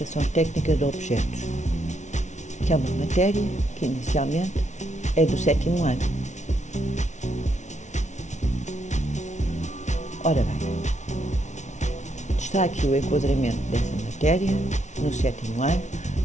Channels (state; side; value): late; right; 0.34 ms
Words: técnica de objetos, que é uma matéria que inicialmente é do sétimo ano. Ora bem, está aqui o enquadramento dessa matéria no sétimo ano,